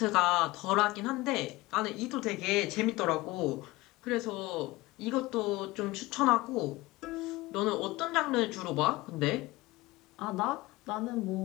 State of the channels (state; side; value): quieter; right; 20.1 dB